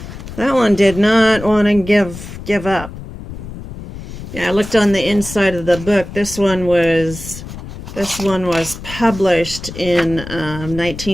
That one did not want to give up. Yeah, I looked on the inside of the book. This one was published in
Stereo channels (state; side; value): noise; left; rumble, 12 dB below the sound